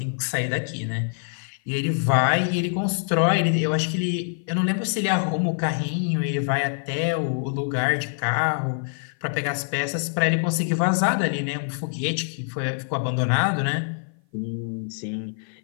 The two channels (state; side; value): silent; right; 55 dB below the other